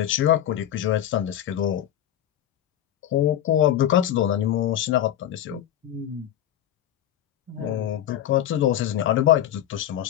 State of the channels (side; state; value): right; quieter; 11.4 dB